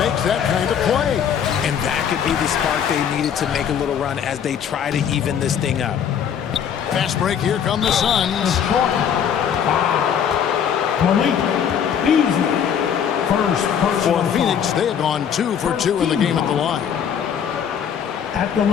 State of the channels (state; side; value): quieter; right; 8.2 dB